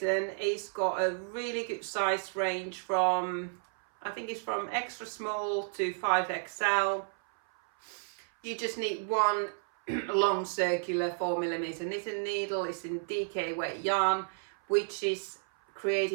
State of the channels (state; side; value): silent; left; 56 dB below the other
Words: it's got a really good size range from, I think it's from extra small to 5XL. You just need one long circular 4mm knitting needle. It's in DK weight yarn, which is